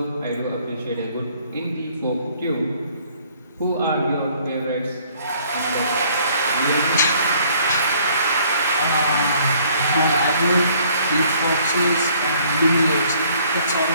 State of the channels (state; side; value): inverted; both; correlation -0.60